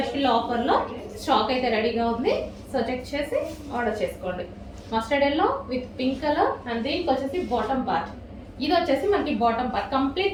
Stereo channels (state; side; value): identical; both; correlation 1.00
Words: ఆఫర్లో స్టాక్ అయితే రెడీగా ఉంది. సో చెక్ చేసి ఆర్డర్ చేసుకోండి. Mustard yellow with pink colour. And దీనికి వచ్చేసి బాటమ్ పార్ట్. ఇది వచ్చేసి మనకి bottom part